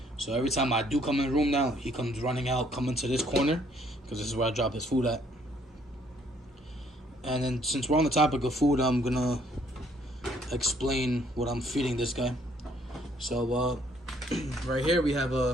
So every time I do come in the room now, he comes running out, coming to this corner, because this is where I drop his food at. And then since we're on the topic of food, I'm gonna explain what I'm feeding this guy. So right here we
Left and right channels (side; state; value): both; normal; correlation 0.65